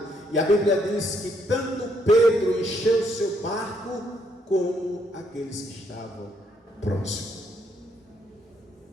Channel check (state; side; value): normal; both; correlation 0.72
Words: E a Bíblia diz que tanto Pedro encheu seu barco, como aqueles que estavam próximos.